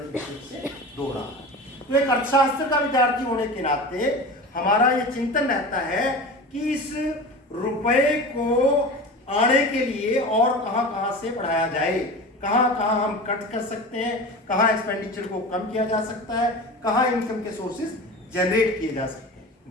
से 2 रहा है। तो एक अर्थशास्त्र का विद्यार्थी होने के नाते हमारा ये चिंतन रहता है कि इस रुपए को आने के लिए और कहां से बढ़ाया जाए, कहां हम कट कर सकते हैं, कहां एक्सपेंडिचर को कम किया जा सकता है, कहां इनकम के सोर्सेज जनरेट किए जा सकते हैं।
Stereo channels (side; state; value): both; normal; correlation 0.32